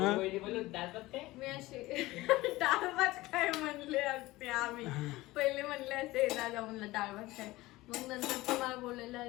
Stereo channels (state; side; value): quieter; right; 19.0 dB